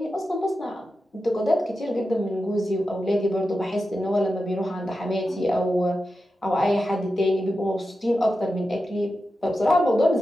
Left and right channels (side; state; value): both; normal; correlation 0.91